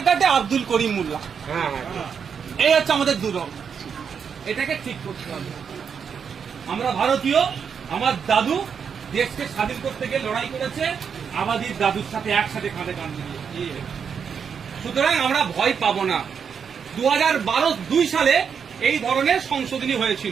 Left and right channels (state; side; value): quieter; left; 6.9 dB